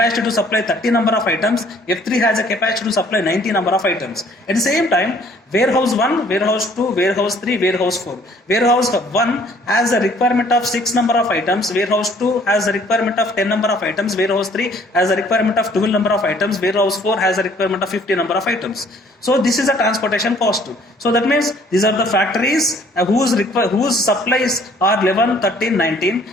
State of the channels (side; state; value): both; normal; correlation 0.59